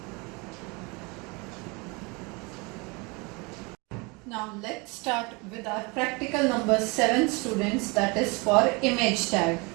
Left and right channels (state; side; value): quieter; left; 28.1 dB